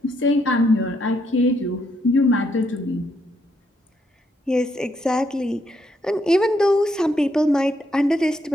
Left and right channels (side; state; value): both; normal; correlation 0.75